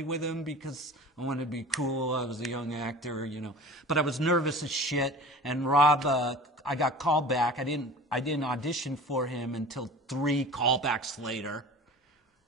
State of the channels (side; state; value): both; normal; correlation 0.39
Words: with him because I wanted to be cool. I was a young actor, But I was nervous as shit. And Rob, I got called back. I didn't audition for him until 3 callbacks later.